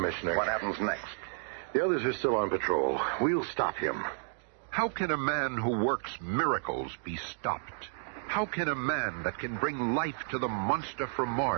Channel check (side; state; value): left; silent; digital silence